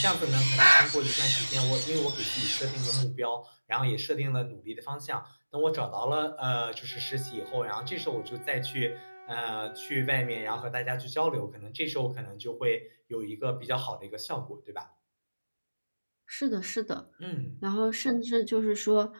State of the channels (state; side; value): inverted; both; correlation -1.00